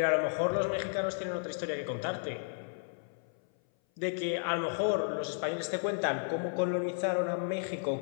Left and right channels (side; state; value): right; silent; 56 dB below the other